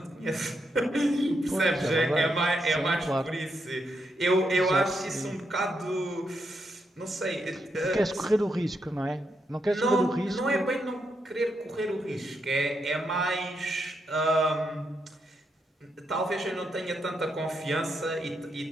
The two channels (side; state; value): both; normal; correlation 0.81